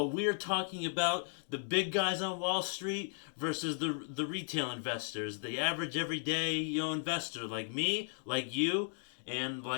we're talking about the big guys on Wall Street versus the retail investors, the average everyday investor like me, like you, and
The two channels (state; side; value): silent; right; digital silence